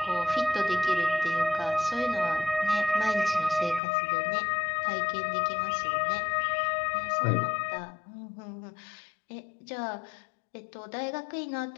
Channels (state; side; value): drops out; right; at 3.8 s